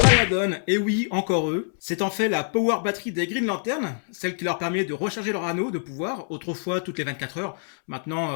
et oui, encore eux. C'est en fait la power battery des Green Lantern, celle qui leur permet de recharger leur anneau de pouvoir, autrefois toutes les 24 heures,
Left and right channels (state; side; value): silent; right; 62 dB below the other